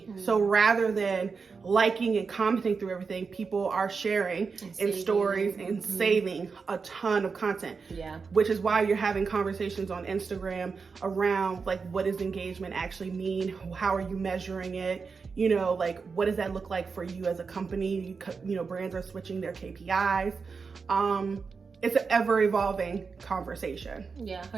So rather than liking and commenting through everything, people are sharing in stories and saving a ton of content. Yeah. Which is why you're having conversations on Instagram around like, what does engagement actually mean? How are you measuring it? You know, like, what does that look like for you as a company? You know, brands are switching their KPIs. It's an ever evolving conversation. Yeah,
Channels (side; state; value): left; quieter; 5.1 dB